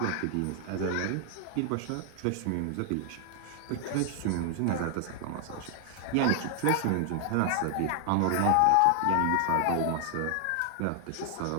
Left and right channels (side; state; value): both; different; correlation 0.00